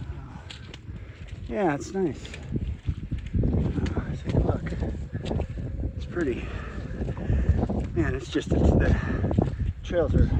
Yeah, it's nice. Take a look. It's pretty. Man, it's just the trails are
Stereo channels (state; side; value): identical; both; correlation 1.00